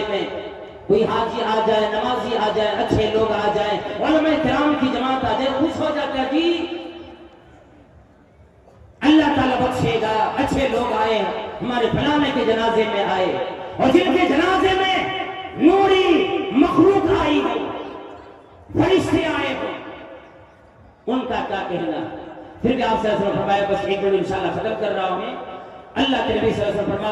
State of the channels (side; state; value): both; identical; correlation 1.00